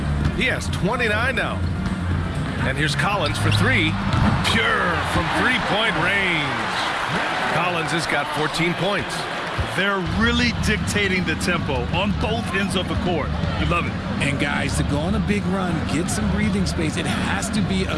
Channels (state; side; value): identical; both; correlation 1.00